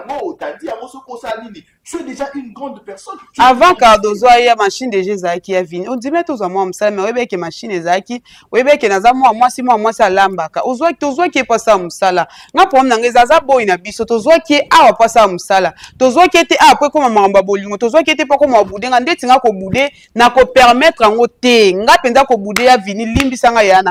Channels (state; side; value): identical; both; correlation 1.00